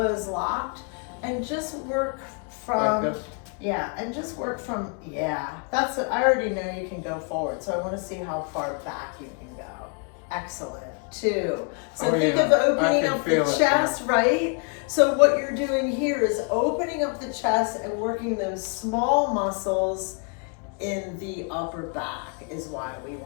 locked and just work from, Like this? yeah, and just work from, yeah. That's what, I already know you can go forward, so I wanna see how far back you can go. Excellent. 2. So Oh, think yeah. of opening I can up the feel it, chest, right? So what you're doing here is opening up the chest and working those small muscles in the upper back is why we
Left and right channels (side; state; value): right; quieter; 37.6 dB